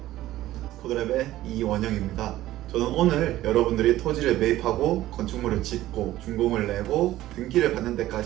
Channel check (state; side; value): quieter; left; 15.0 dB